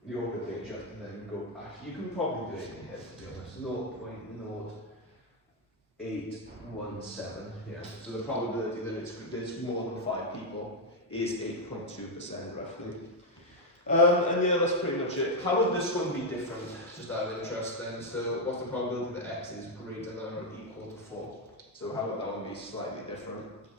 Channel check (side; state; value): both; normal; correlation 0.03